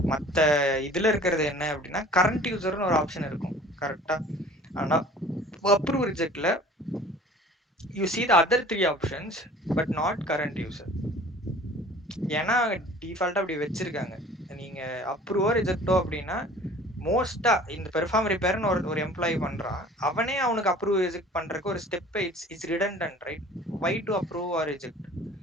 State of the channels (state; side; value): normal; both; correlation 0.47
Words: மற்ற இதுல இருக்கிறது என்ன அப்படின்னா கரண்ட் யூசர்னு ஒரு ஆப்ஷன் இருக்கும் கரெக்டா. ஆனா அப்ரூவ் ரிஜெக்ட்ல you see the other 3 options but not current user. ஏன்னா டிஃபால்ட்டா அப்படி வச்சிருக்காங்க. நீங்க அப்ரூவோ ரிஜெக்டோ அப்படின்னா மோஸ்டா இந்த பெர்ஃபார்ம் ரிப்பேர்னு ஒரு எம்ப்ளாயி பண்றான், அவனே அவனுக்கு அப்ரூவ் ரிஜெக்ட் பண்றதுக்கு ஒரு step it's redundant, right? Why to approve or reject?